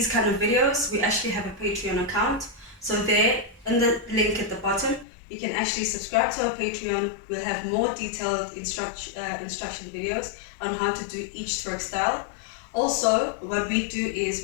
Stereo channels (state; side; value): drops out; right; at 5.1 s